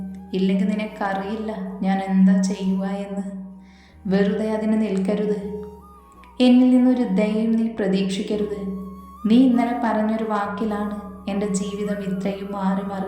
ഇല്ലെങ്കിൽ നിനക്കറിയില്ല ഞാൻ എന്താ ചെയ്യുക എന്ന്. വെറുതെ അതിന് നിൽക്കരുത്. എന്നിൽ നിന്നൊരു ദയയും നീ പ്രതീക്ഷിക്കരുത്. നീ ഇന്നലെ പറഞ്ഞൊരു വാക്കിലാണ് എൻ്റെ ജീവിതം ഇത്രയും മാറി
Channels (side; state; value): both; identical; correlation 1.00